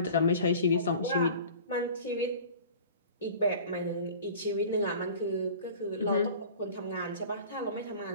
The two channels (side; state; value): both; inverted; correlation -0.42